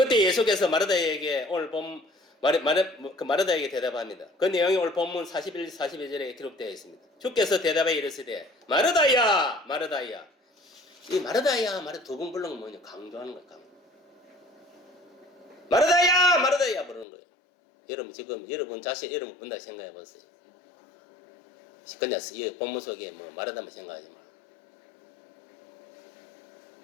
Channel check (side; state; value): right; drops out; at 17.1 s